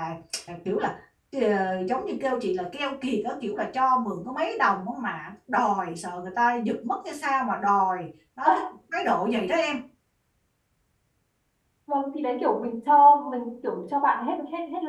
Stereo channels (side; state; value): both; identical; correlation 1.00